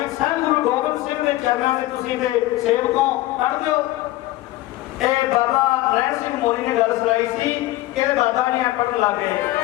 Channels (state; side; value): quieter; right; 16.9 dB